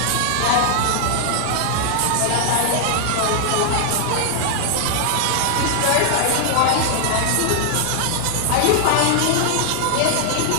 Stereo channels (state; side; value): different; both; correlation -0.01